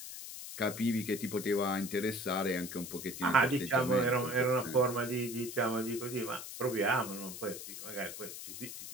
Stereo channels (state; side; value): noise; left; hiss, 10 dB below the sound